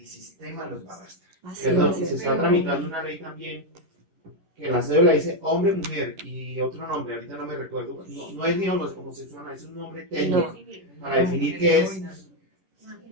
sistema los va a arrastrar. Así Perdón, y es. se está tramitando una ley también que la cédula dice hombre, mujer y otro nombre, ahorita no me recuerdo, no es ni homosexual, es un nombre técnico para definir qué es.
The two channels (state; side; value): late; left; 11 ms